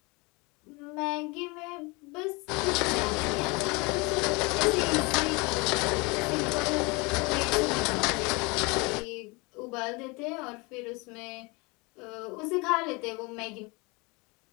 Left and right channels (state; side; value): quieter; right; 27.2 dB